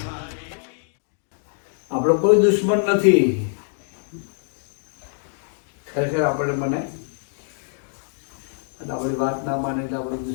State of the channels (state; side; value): silent; right; digital silence